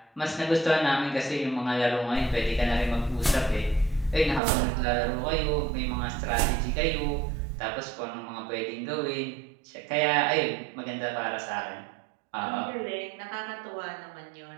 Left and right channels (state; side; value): drops out; left; at 4.4 s